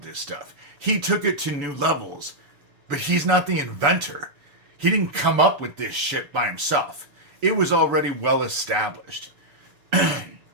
this stuff. He took it to new levels, but he's not the inventor. He didn't come up with this shit by himself. It was already well established.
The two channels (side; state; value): left; late; 7.0 ms